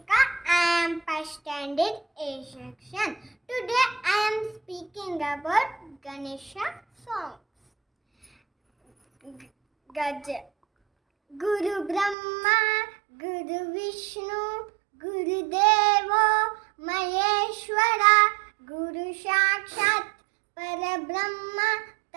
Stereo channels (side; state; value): left; drops out; at 12.2 s